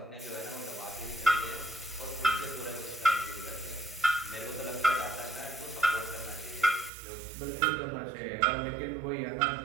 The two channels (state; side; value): drops out; left; at 6.9 s